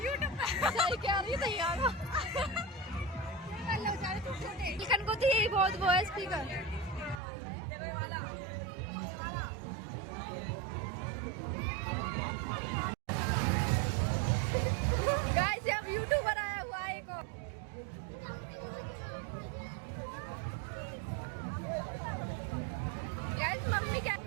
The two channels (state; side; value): drops out; left; at 7.2 s